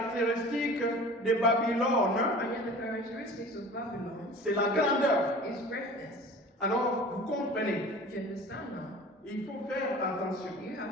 de Babylone, And yet the characteristics of Babylon c'est la grandeur. is greatness. Alors, vous comprenez, Do you understand now? il faut faire attention. You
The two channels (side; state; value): both; normal; correlation 0.41